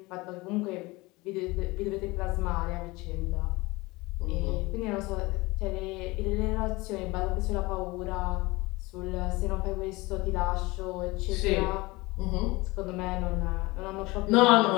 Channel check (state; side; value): quieter; right; 22.5 dB